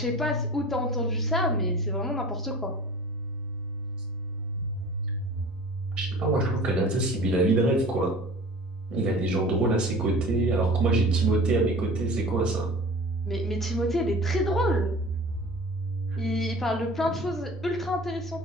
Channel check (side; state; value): both; normal; correlation 0.42